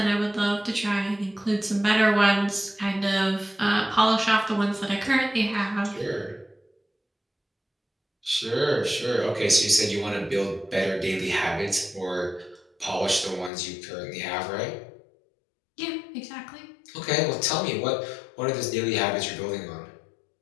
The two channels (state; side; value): drops out; right; at 13.5 s